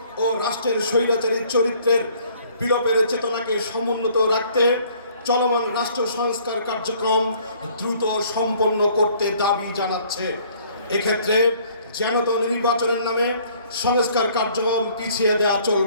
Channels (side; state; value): both; inverted; correlation -0.59